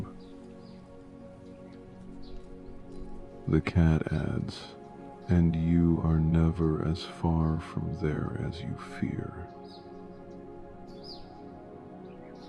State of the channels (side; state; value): both; identical; correlation 1.00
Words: The cat adds, and you are never as far from there as you fear.